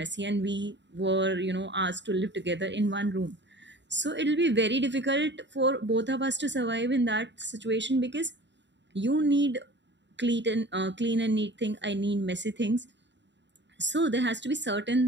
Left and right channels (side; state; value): left; late; 0.52 ms